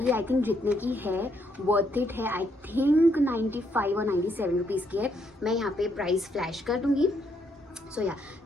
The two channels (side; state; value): both; normal; correlation 0.74